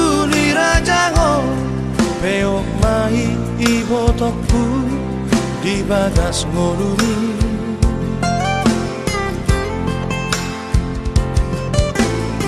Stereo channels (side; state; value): both; identical; correlation 1.00